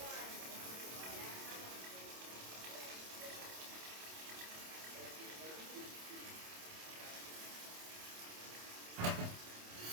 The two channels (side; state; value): left; late; 27 ms